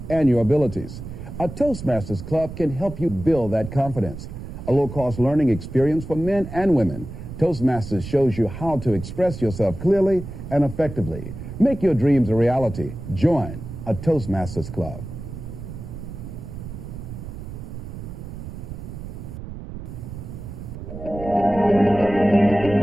and your abilities. A Toastmasters Club can help you build that confidence. A low-cost learning experience for men and women. Toastmasters shows you how to express yourself clearly and effectively. Make your dreams a reality. Join a Toastmasters Club.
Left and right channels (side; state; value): right; noise; rumble, 10 dB below the sound